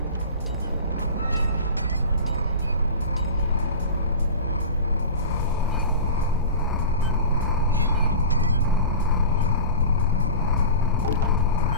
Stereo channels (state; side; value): inverted; both; correlation -0.32